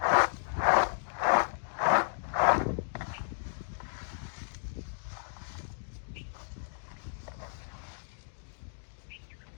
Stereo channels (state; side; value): silent; right; digital silence